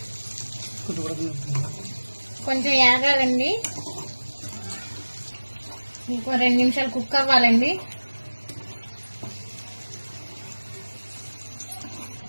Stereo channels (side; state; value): both; inverted; correlation -1.00